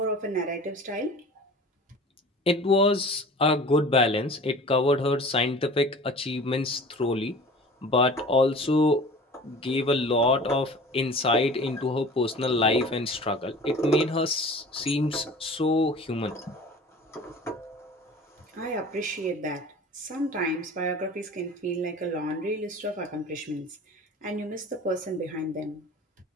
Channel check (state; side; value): normal; both; correlation 0.41